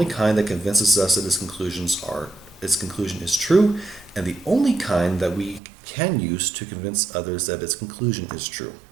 kind that convinces us that its conclusion is true, and the only kind that we can use to convince others that its conclusion is true.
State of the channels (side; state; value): left; drops out; at 5.6 s